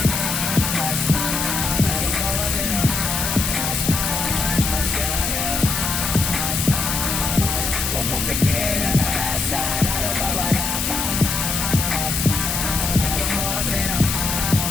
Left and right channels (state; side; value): noise; left; hiss, 1 dB below the sound